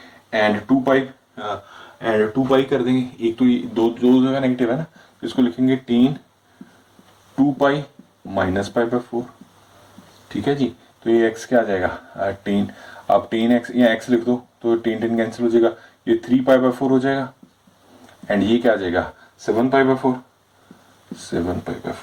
एंड 2 पाई कर देंगे। एक तो ये दो जगह नेगेटिव है ना, तो इसको लिखेंगे टेन 2 पाई माइनस π/4, ठीक है जी। तो ये x क्या आ जाएगा, टेन, अब टेन एक्स या x लिख दो तो टेन टेन कैंसिल हो जाएगा, ये 3π/4 हो जाएगा एंड ये क्या आ जाएगा 7π/4,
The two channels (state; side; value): identical; both; correlation 1.00